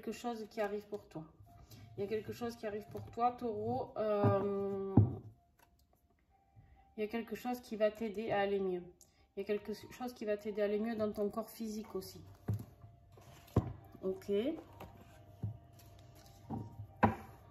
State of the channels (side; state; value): both; identical; correlation 1.00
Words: chose qui arrive pour toi. Il y a quelque chose qui arrive pour toi, Taureau. Il y a quelque chose qui va t'aider à aller mieux. Il y a quelque chose qui va t'aider à aller mieux dans ton corps physique aussi. Ok.